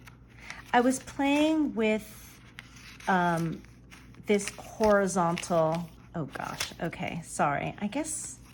I was playing with this horizontal, oh gosh, okay, sorry. I guess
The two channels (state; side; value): identical; both; correlation 1.00